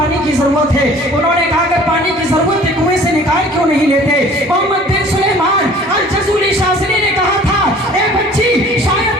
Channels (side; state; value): both; normal; correlation 0.50